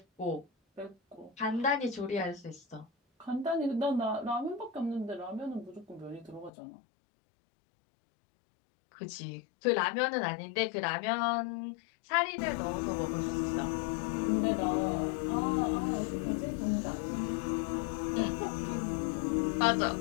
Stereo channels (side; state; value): right; drops out; at 6.5 s